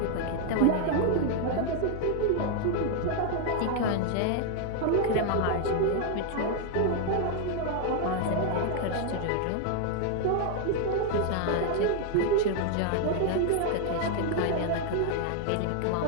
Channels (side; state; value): both; different; correlation 0.00